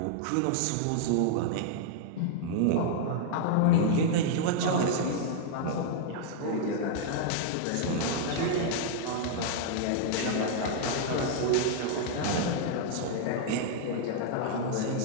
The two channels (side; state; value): both; different; correlation -0.01